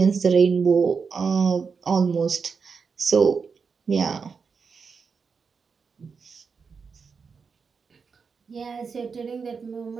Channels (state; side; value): quieter; left; 5.5 dB